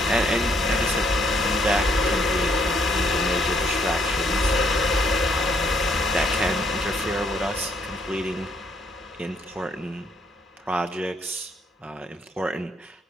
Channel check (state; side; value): normal; both; correlation 0.69